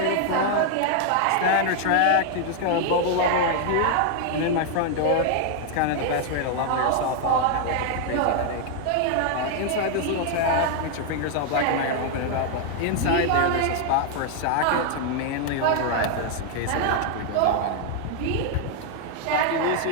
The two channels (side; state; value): both; different; correlation 0.00